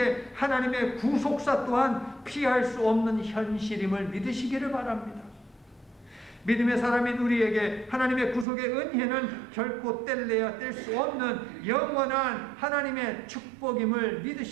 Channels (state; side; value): drops out; left; at 8.5 s